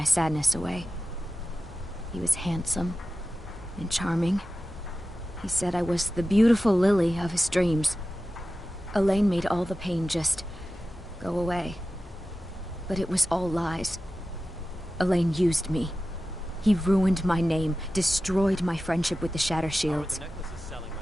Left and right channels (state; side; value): normal; both; correlation 0.94